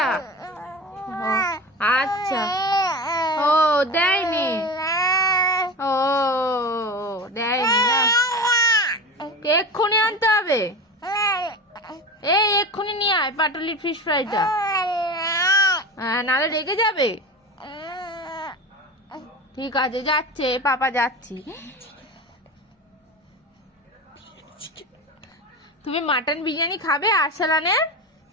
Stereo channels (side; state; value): both; normal; correlation 0.28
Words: আচ্ছা, ও দেয়নি, ও দেয়নি না, এক্ষুনি আনতে হবে। এই এক্ষুনি নিয়ে আয় পাটুলির ফিশ ফ্রাইটা, নাহলে রেগে যাবে। ঠিক আছে, যাচ্ছে, পাপা যাচ্ছি। তুমি মাটন বিরিয়ানি খাবে আরসালানের?